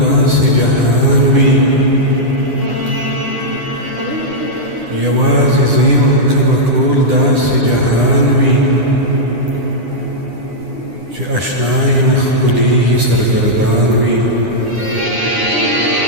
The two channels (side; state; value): left; late; 9.9 ms